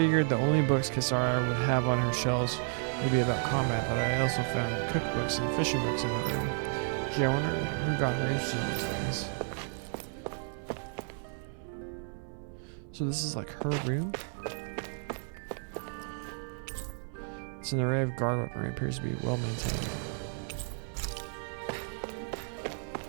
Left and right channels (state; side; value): silent; left; 56 dB below the other